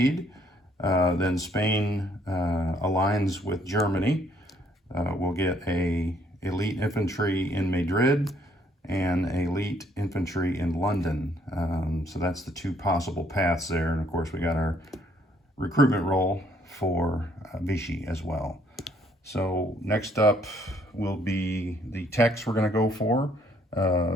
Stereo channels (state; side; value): normal; both; correlation 0.66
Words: then Spain aligns with Germany. We'll get a elite infantry in Madrid and elite infantry in London. So that's the 2 possible paths there. And of course, we got our recruitment roll for Vichy as well. So next up will be the techs we're going to go for.